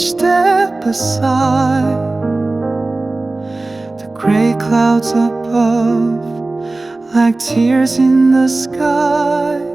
step aside. The gray clouds above, like tears in the sky.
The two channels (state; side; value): quieter; left; 3.1 dB